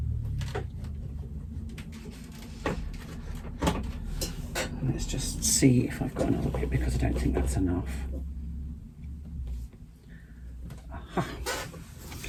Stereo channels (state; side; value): identical; both; correlation 1.00